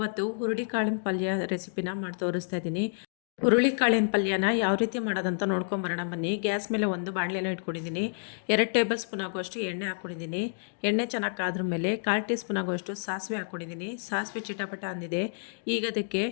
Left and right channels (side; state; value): right; silent; digital silence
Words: ಹುರುಳಿಕಾಳಿನ ಪಲ್ಯ ರೆಸಿಪಿನ ಮಾಡಿ ತೋರಿಸ್ತಾ ಇದ್ದೀನಿ. ಹುರುಳಿಕಾಳಿನ ಪಲ್ಯನ ಯಾವ ರೀತಿ ಮಾಡೋದಂತ ನೋಡ್ಕೊಂಬರೋಣ ಬನ್ನಿ. ಗ್ಯಾಸ್ ಮೇಲೆ ಒಂದು ಬಾಣಲೆನ ಇಟ್ಕೊಂಡಿದ್ದೀನಿ. 2 ಟೇಬಲ್ ಸ್ಪೂನ್ ಆಗುವಷ್ಟು ಎಣ್ಣೆ ಹಾಕ್ಕೊಂಡಿದ್ದೀನಿ. ಎಣ್ಣೆ ಚೆನ್ನಾಗಿ ಕಾದ್ರ ಮೇಲೆ 1/4 ಟೀ ಸ್ಪೂನ್ ಆಗುವಷ್ಟು ಸಾಸಿವೆ ಹಾಕ್ಕೊಂಡಿದ್ದೀನಿ. ಸಾಸಿವೆ ಚಿಟಪಟ ಅಂದಿದೆ. ಈಗ ಅದಕ್ಕೆ